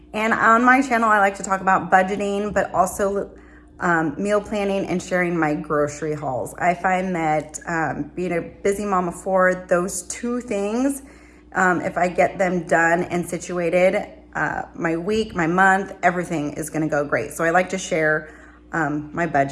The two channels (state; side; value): identical; both; correlation 1.00